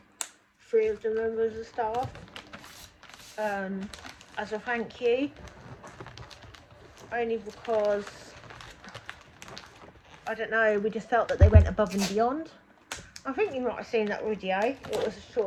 3 of the members of staff as a thank you, only because I don't know, we just felt that they went above and beyond. I think you might have seen that video, it was a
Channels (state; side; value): identical; both; correlation 1.00